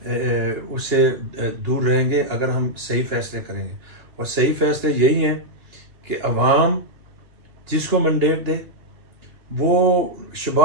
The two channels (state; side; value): late; left; 2.9 ms